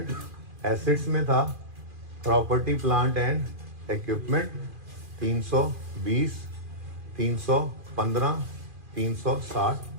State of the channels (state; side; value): late; left; 2.4 ms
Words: एसेट्स में था, प्रॉपर्टी प्लांट एंड इक्विपमेंट 320, 315, 360,